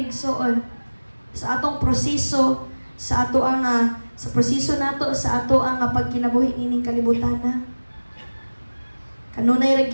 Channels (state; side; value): inverted; both; correlation -1.00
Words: igsoon sa atong proseso, sa ato ang sa proseso nato sa ato ang pagkinabuhi ining kalibutana. Kanunay ra